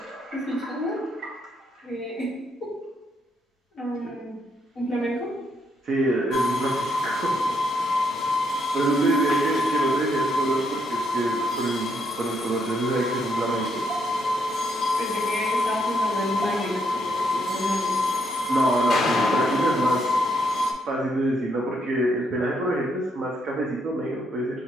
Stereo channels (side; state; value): both; normal; correlation 0.75